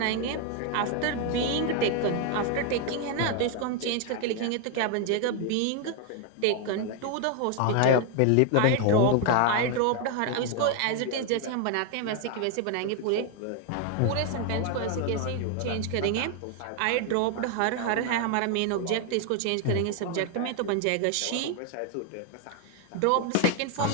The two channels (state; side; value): different; both; correlation 0.01